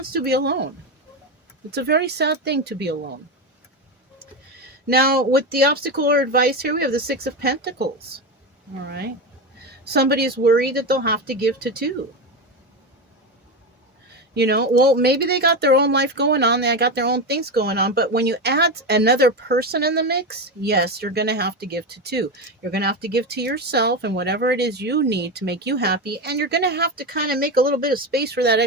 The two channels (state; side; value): normal; both; correlation 0.16